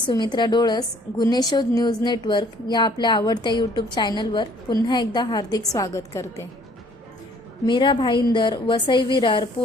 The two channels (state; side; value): normal; both; correlation 0.58